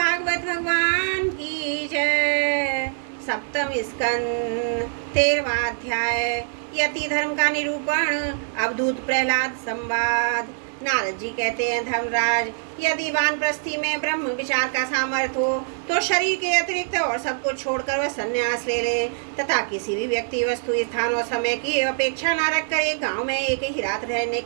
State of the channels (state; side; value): silent; left; digital silence